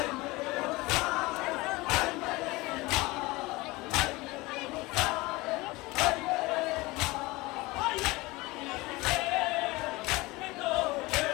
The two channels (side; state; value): right; quieter; 22.0 dB